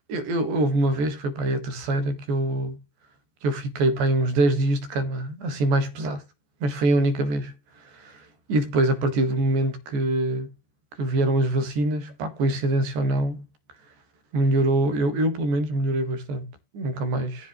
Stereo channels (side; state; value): left; late; 14 ms